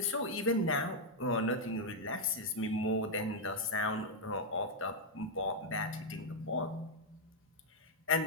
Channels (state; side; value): normal; both; correlation -0.03